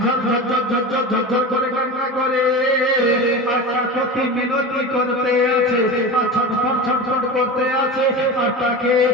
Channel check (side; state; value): both; normal; correlation 0.28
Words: ঝরঝর ঝরঝর ঝরঝর করে কান্না করে। আর কি মিনতি করতে আছে, আর ছটফট করতে আছে, আর তাকে